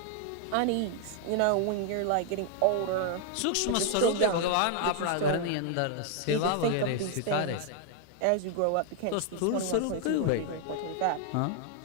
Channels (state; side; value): different; both; correlation 0.00